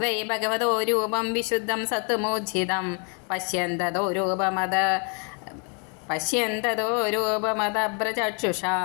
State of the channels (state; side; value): quieter; right; 38.0 dB